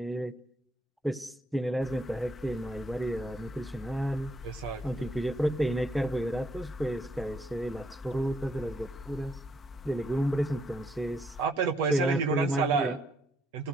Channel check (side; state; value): both; normal; correlation 0.72